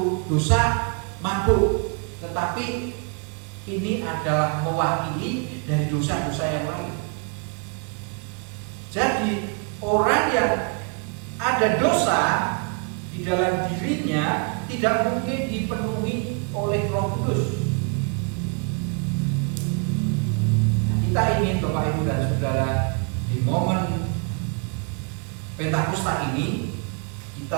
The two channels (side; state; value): left; quieter; 37.5 dB